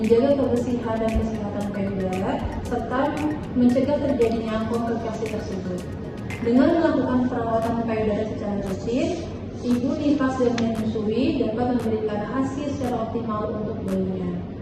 kebersihan dan kesehatan payudara, serta mencegah terjadinya komplikasi tersebut. Dengan melakukan perawatan payudara secara rutin, ibu nifas dan menyusui dapat memberikan hasil secara optimal untuk bayinya.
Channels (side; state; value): both; identical; correlation 1.00